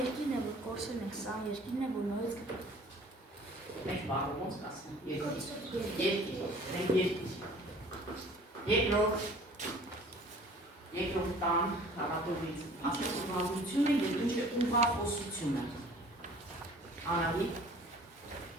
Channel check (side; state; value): both; normal; correlation 0.50